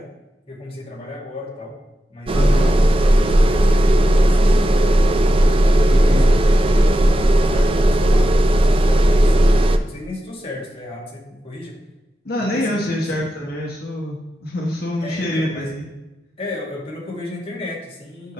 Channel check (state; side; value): normal; both; correlation 0.90